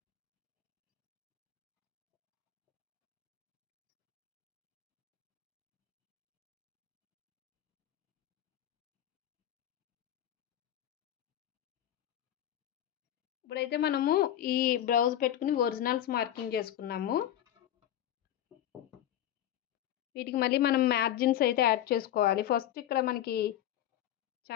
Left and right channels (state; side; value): quieter; right; 11.8 dB